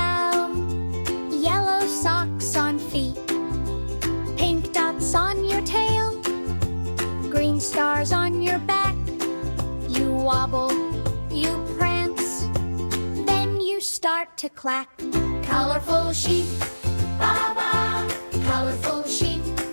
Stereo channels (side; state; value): both; inverted; correlation -1.00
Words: yellow socks on feet. Pink dots on your tail, green stars on your back. You wobble, you prance, then you start to clack. Colorful sheep, baa baa. Colorful sheep,